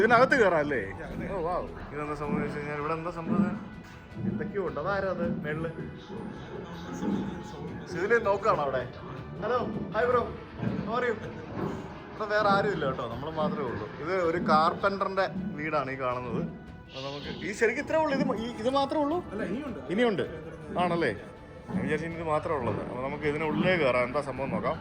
ഇതിനകത്ത് കയറാം അല്ലേ? ഓ വാ, ഇതെന്താ സംഭവിച്ചു കഴിഞ്ഞാൽ ഇവിടെ എന്താ സംഭവം എന്തൊക്കെയോ ഉണ്ട്. അതാരാ അത് മേളില് സിവിലിയൻ നോക്കുകയാണോ അവിടെ? ഹലോ ഹായ് ബ്രോ, പറയൂ. ഇവിടെ വേറെ ആരും ഇല്ല കേട്ടോ, നമ്മൾ മാത്രമേ ഉള്ളൂ. ഇത് ഒരു കാർപ്പൻറ്ററിൻ്റെ വീടാണ് ഈ കാണുന്നത്. അപ്പോൾ നമുക്ക് ഈ ശരിക്കും ഇത്രേ ഉള്ളൂ. ഇത് മാത്രമേ ഉള്ളൂ? ഇനിയുണ്ട് ആണല്ലേ? ഞാൻ വിചാരിച്ചു ഇത് മാത്രമേ ഉള്ളത്. അപ്പോൾ നമുക്ക് ഇതിനുള്ളിലേ കയറാം. എന്താ സംഭവം നോക്കാം.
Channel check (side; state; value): both; identical; correlation 1.00